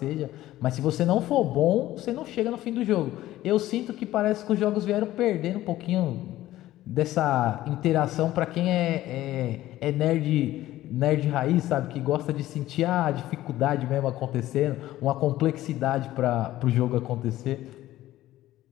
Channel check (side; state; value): right; quieter; 15.0 dB